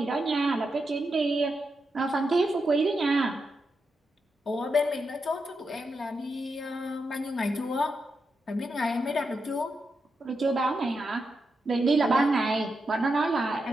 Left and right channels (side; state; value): both; normal; correlation 0.86